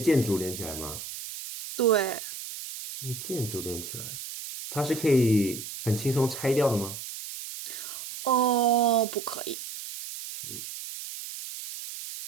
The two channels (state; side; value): noise; right; hiss, 10 dB below the sound